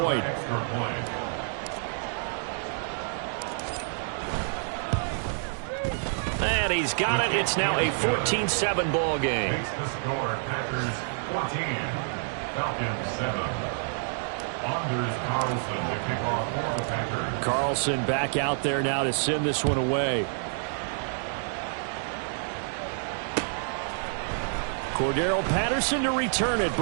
And he's got it. It's now a 14-7 ball game. Makes the score Packers 14, Falcons 7. Anders Carlson to kick off for the Packers. Carlson back out there now to send this one away. Cordero Patterson to return it,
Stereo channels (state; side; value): silent; left; digital silence